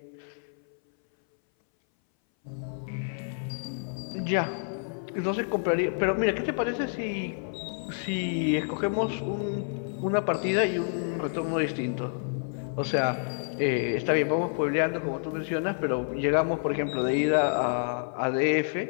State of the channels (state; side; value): silent; right; 59 dB below the other